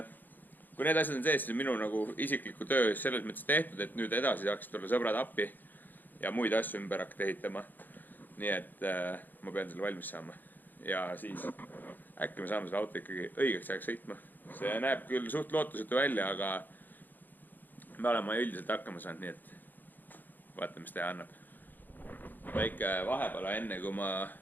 kui need asjad on sees, siis minu nagu isikliku töö selles mõttes tehtud, et nüüd edasi saaks tulla sõbrad appi ja muid asju ümber hakata ehitama. Nii et ma pean selle valmis saama ja siis äkki me saame selle auto ikkagi õigeks ajaks sõitma. See näeb küll suht lootusetu välja, aga me oleme üldiselt hakkama saanud, nii et vaatame, mis teha annab. Väike vahepala enne, kui ma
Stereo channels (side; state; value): right; late; 0.087 ms